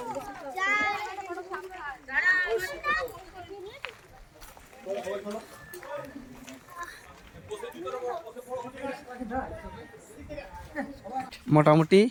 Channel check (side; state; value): both; identical; correlation 1.00